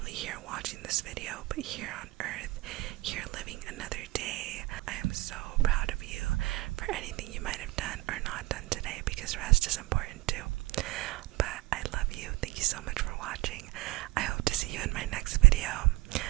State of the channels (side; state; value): left; quieter; 20.6 dB